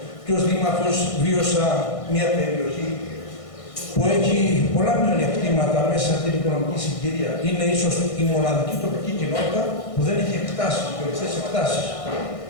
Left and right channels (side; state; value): right; late; 1.6 ms